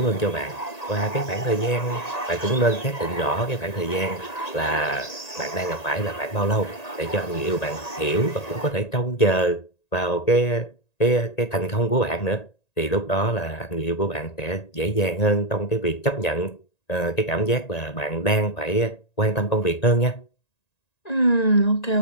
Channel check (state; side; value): late; right; 1.9 ms